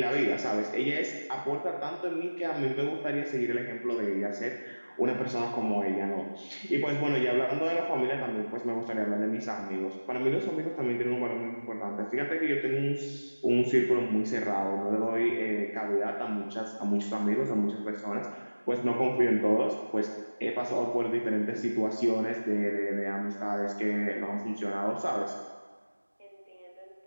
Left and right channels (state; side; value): inverted; both; correlation -1.00